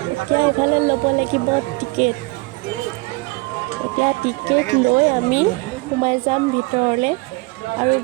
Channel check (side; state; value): left; quieter; 25.1 dB